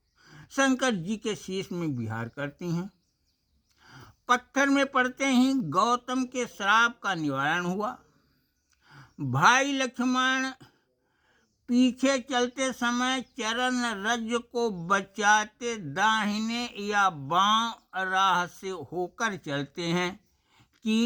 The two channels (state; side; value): identical; both; correlation 1.00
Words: शंकर जी के शीश में विहार करती हैं। पत्थर में पड़ते ही गौतम के श्राप का निवारण हुआ। भाई लक्ष्मण पीछे चलते समय चरण रज को बचाते दाहिने या बांव राह से होकर चलते हैं कि